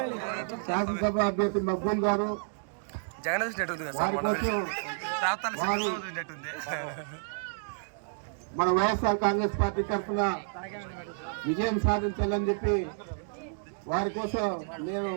శాసనసభ అభ్యర్థి మక్బూల్ గారు మన వైఎస్ఆర్ కాంగ్రెస్ పార్టీ తరఫున విజయం సాధించాలని చెప్పి వారి కోసం నేను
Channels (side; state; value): left; silent; digital silence